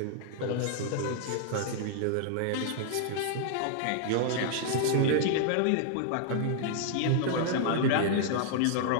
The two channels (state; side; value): different; both; correlation -0.01